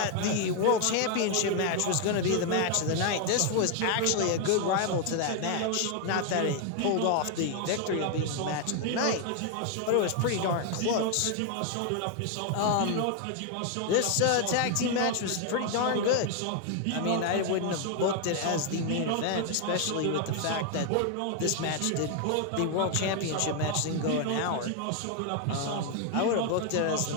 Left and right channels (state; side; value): different; both; correlation 0.00